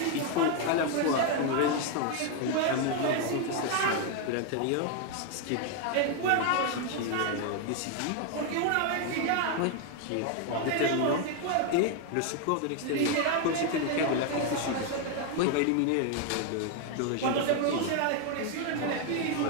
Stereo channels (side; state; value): both; different; correlation 0.01